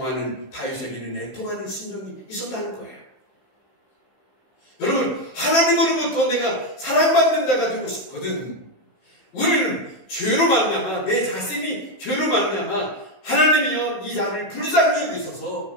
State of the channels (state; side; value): late; right; 15 ms